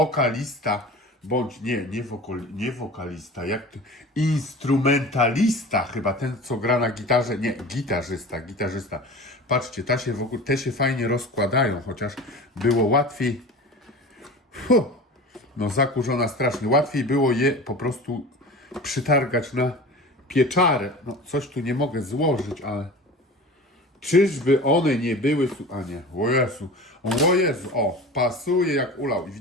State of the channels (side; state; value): both; normal; correlation 0.36